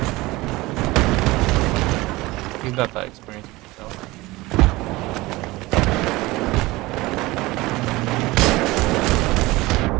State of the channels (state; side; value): quieter; left; 20.5 dB